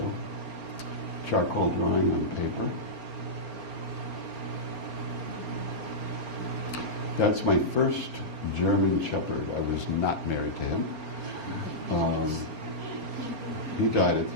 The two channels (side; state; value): left; late; 4.3 ms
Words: Charcoal drawing on paper. That's my first German Shepherd. I was not married to him. He died at